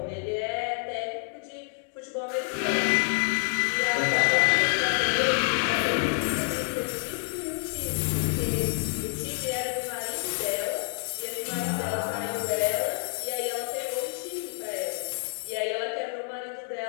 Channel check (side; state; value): right; silent; digital silence